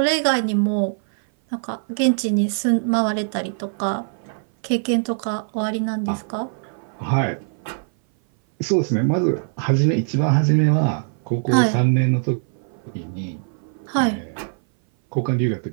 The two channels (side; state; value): left; silent; 58 dB below the other